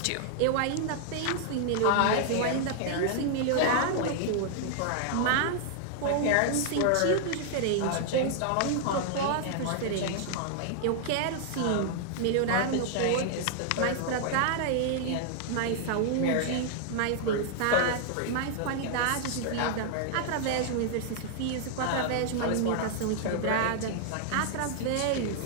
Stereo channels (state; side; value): different; both; correlation -0.01